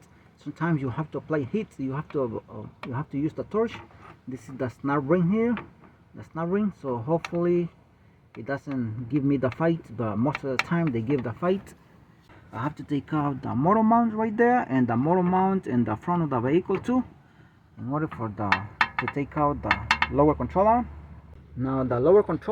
Sometimes you have to apply heat, you have to use the torch. This is the snap ring here, the snap ring, so hopefully it doesn't give me the fight, but most of the time they give the fight. I have to take out the motor mount right there, and the motor mount in the front of the vehicle too, in order for to take out the lower control arm. Now the lower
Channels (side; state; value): both; identical; correlation 1.00